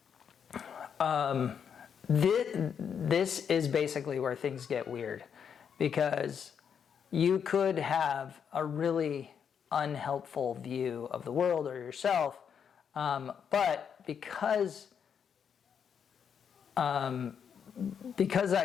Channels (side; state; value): right; quieter; 7.5 dB